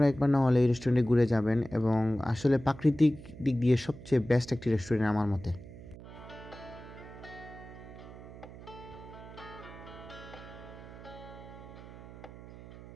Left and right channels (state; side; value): noise; right; hum, 16 dB below the sound